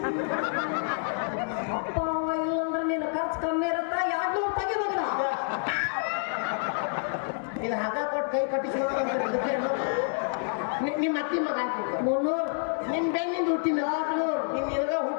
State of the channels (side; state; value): right; silent; digital silence